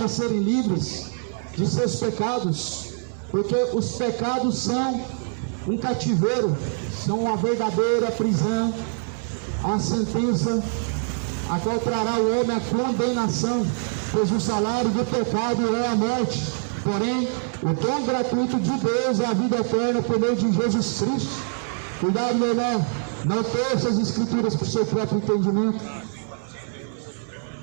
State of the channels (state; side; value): silent; left; 62 dB below the other